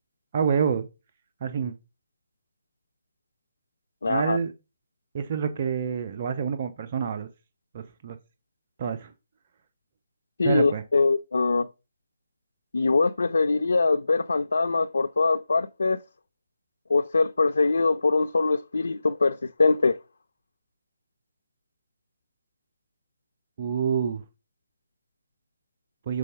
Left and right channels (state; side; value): inverted; both; correlation -0.87